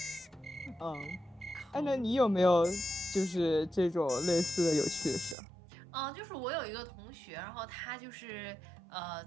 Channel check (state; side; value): drops out; left; at 5.4 s